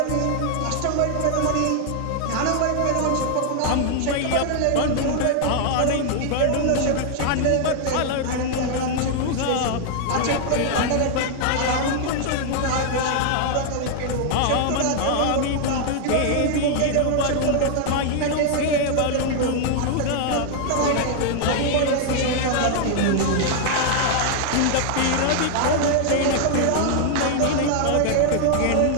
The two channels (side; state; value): both; different; correlation 0.00